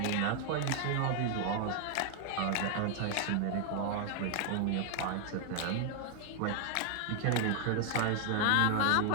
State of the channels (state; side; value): different; both; correlation 0.00